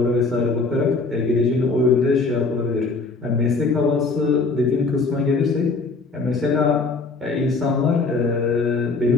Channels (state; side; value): quieter; right; 3.9 dB